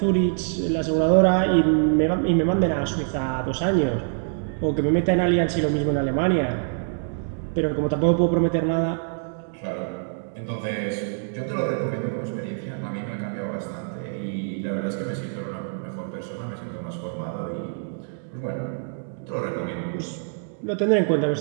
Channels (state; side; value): silent; left; digital silence